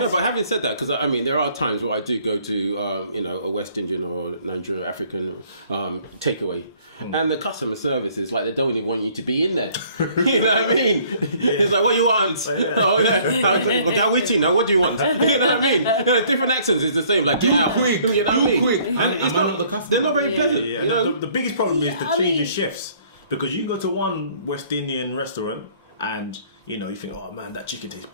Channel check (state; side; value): inverted; both; correlation -0.59